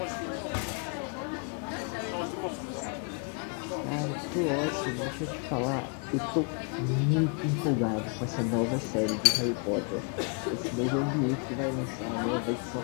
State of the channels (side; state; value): right; quieter; 37.8 dB